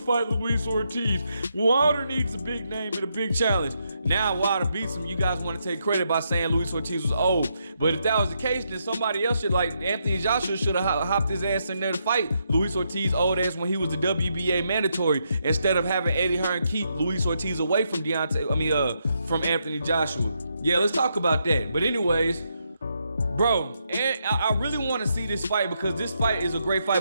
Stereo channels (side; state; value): both; inverted; correlation -0.80